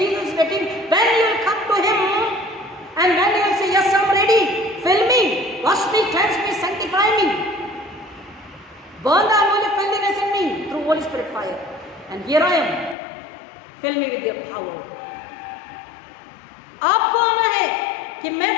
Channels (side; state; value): right; drops out; at 13.0 s